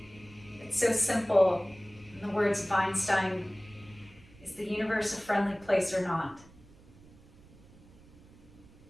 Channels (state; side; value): noise; right; rumble, 24 dB below the sound